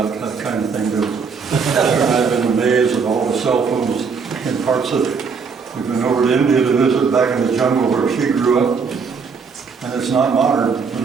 that kind of thing, do we? I've been amazed at all the cell phones in parts of it. We've been over to India to visit back in the jungle where she grew up, and it's not modern.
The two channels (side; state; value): left; quieter; 5.4 dB